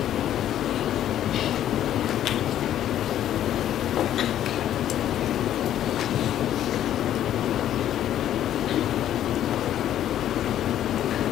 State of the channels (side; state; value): right; quieter; 11.4 dB